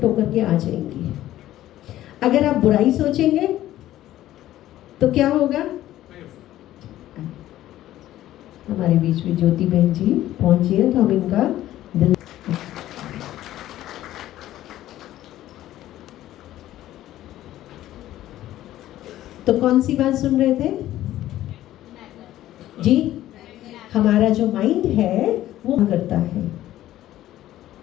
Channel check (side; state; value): right; quieter; 13.9 dB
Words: होकर के आ जाएंगी। अगर आप बुराई सोचेंगे तो क्या होगा? हमारे बीच में ज्योति बहन जी पहुंची है तो हम इनका दिल। तो कौन सी बात सुन रहे थे जी? हमारा जो माइंड है वो करता है।